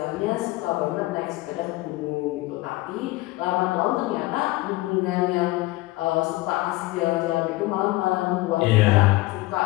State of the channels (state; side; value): quieter; right; 19.6 dB